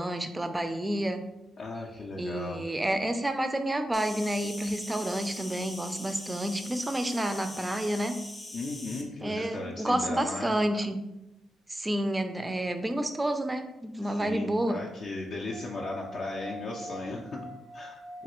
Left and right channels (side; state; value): both; normal; correlation 0.91